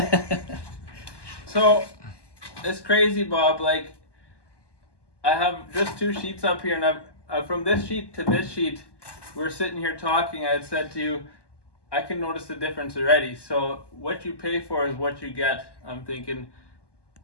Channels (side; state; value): right; late; 1.2 ms